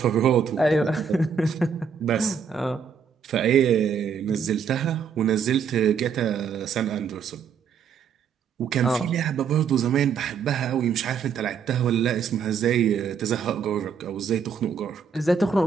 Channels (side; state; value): left; quieter; 6.6 dB